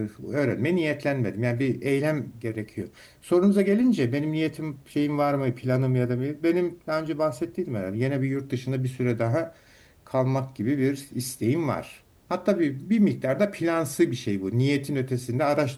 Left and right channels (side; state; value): both; identical; correlation 1.00